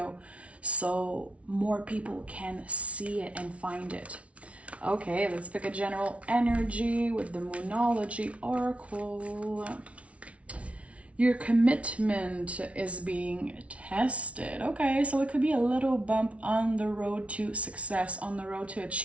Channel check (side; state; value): left; late; 0.063 ms